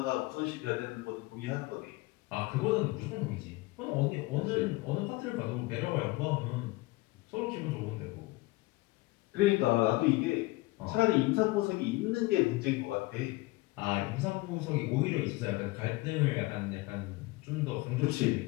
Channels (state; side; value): quieter; right; 21.3 dB